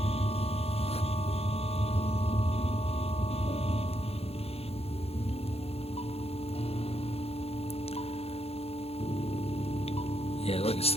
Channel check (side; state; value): right; late; 0.29 ms